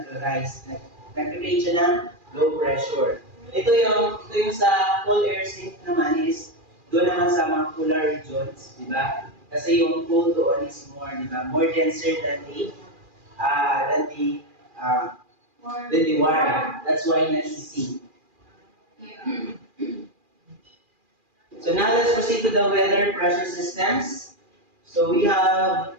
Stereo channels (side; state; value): left; late; 2.4 ms